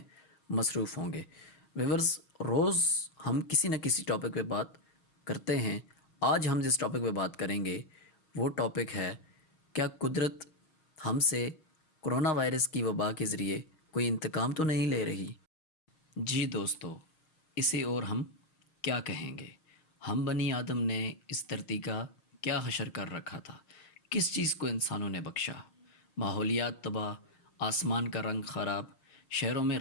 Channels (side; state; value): right; late; 6.3 ms